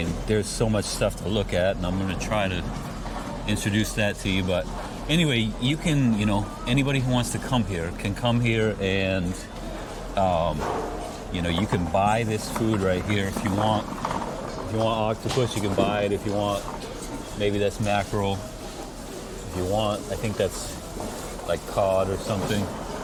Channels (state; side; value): identical; both; correlation 1.00